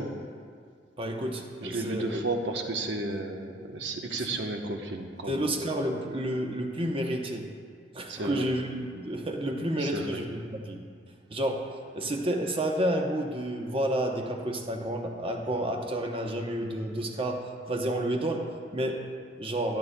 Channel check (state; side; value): normal; both; correlation 0.58